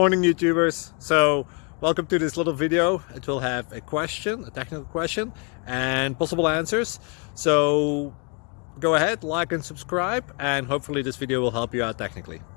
YouTubers. So welcome to this little video. It will have a question, a technical question, and possible answers. So go ahead, like and subscribe, and hopefully this video will help you out technically.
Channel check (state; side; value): quieter; right; 35.1 dB